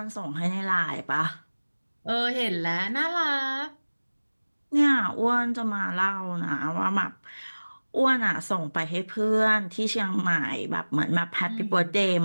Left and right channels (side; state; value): both; inverted; correlation -1.00